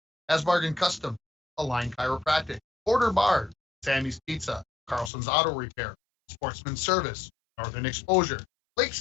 Asbargan Custom, Align Chiropractic, Border Bar, Sammy's Pizza, Carlson's Auto Repair, Sportsman Service, Northern Exposure,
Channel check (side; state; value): right; drops out; at 5.1 s